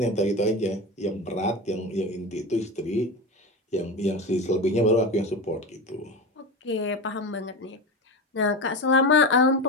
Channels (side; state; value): both; normal; correlation 0.23